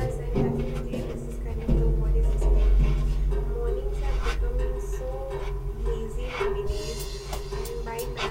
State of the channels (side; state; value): both; identical; correlation 1.00